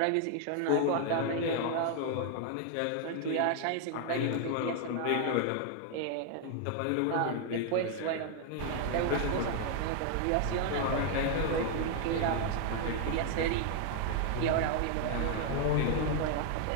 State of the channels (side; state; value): both; different; correlation 0.00